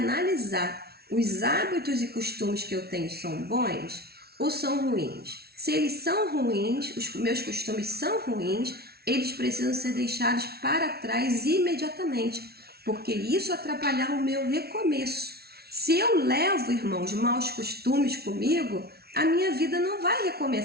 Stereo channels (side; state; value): left; late; 0.45 ms